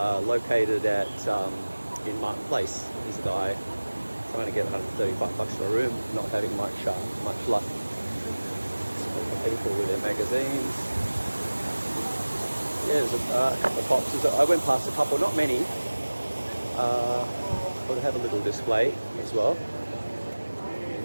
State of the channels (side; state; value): both; inverted; correlation -1.00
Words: at in Martin Place. There's a guy trying to get $135 for a room, not having much luck. People with their magazines. Yeah, there's a couple of boxes. I went past a couple, not many. But have a little display as well.